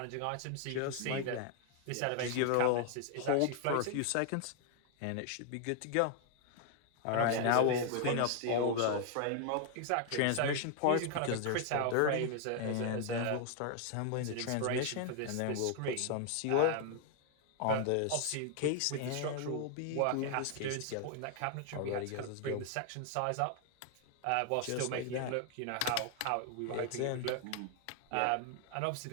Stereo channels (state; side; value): different; both; correlation 0.00